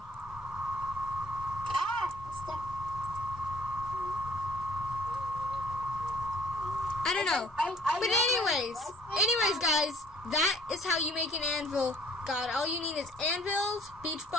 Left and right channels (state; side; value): normal; both; correlation 0.57